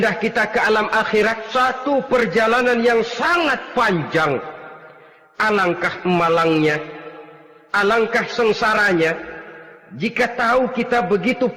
kita ke alam akhirat. Satu perjalanan yang sangat panjang. Alangkah malangnya, alangkah sengsaranya jika tahu kita begitu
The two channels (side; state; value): both; identical; correlation 1.00